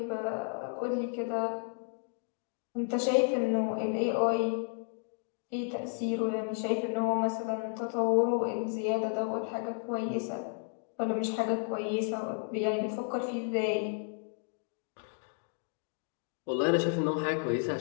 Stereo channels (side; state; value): right; silent; 56 dB below the other